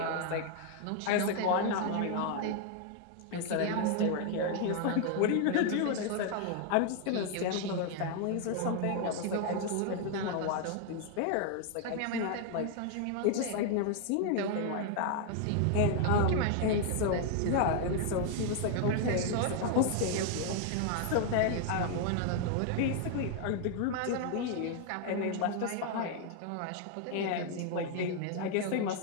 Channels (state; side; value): different; both; correlation 0.00